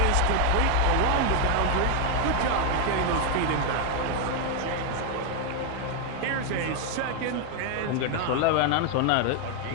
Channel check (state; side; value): different; both; correlation 0.01